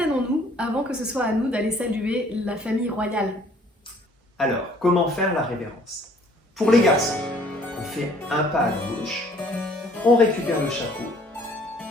avant que ce soit à nous d'aller saluer la famille royale. Alors, comment faire la révérence? Pour les garçons, on fait un pas à gauche, on récupère le chapeau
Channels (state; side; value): normal; both; correlation 0.58